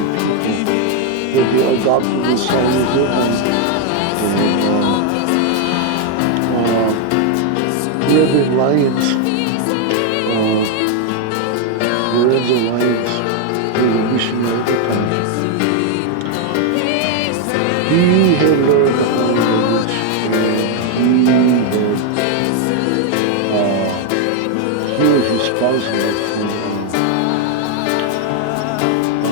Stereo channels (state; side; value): different; both; correlation 0.01